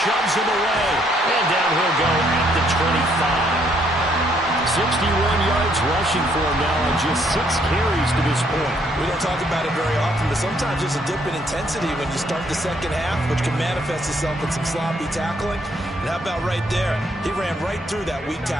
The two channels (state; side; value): normal; both; correlation 0.69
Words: him away, and down he'll go at the 25. 61 yards rushing for him now on just 6 carries to this point. We don't talk about it very often, but sometimes there's a dip in intensity when you start the second half, which can manifest itself in some sloppy tackling. And how about right there? He ran right through that weak